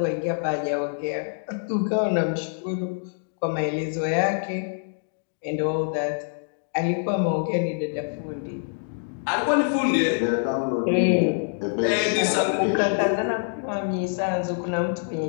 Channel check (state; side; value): silent; right; digital silence